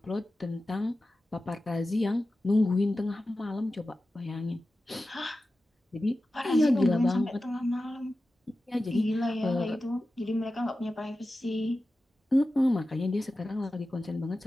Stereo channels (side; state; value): both; normal; correlation 0.94